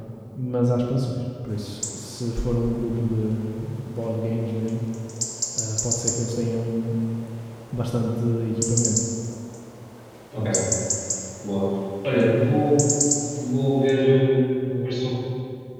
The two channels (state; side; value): identical; both; correlation 1.00